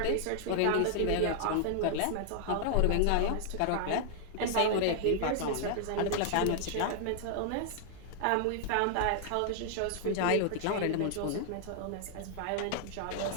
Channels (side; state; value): both; different; correlation -0.01